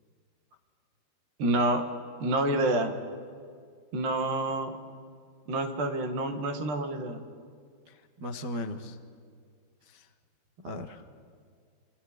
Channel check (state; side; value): late; left; 12 ms